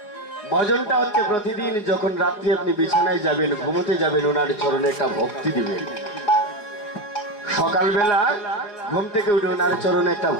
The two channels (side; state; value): right; late; 4.8 ms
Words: ভজনটা হচ্ছে প্রতিদিন যখন রাত্রি আপনি বিছানায় যাবেন, ঘুমোতে যাবেন, ওনার চরণে একটা ভক্তি দিবেন। সকালবেলা ঘুম থেকে উঠে ওনার চরণে একটা